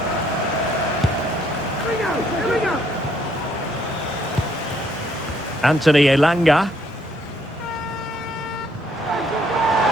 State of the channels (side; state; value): both; normal; correlation 0.68